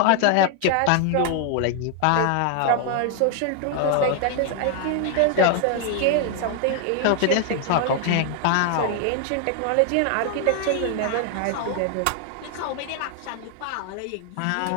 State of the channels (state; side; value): different; both; correlation 0.00